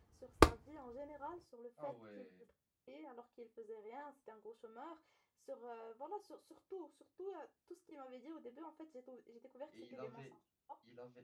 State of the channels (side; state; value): both; identical; correlation 1.00